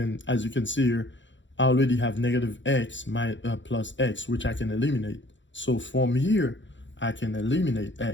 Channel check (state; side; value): late; right; 0.54 ms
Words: as you can see here, I already have negative x plus x, which I can eliminate. So from here, I can eliminate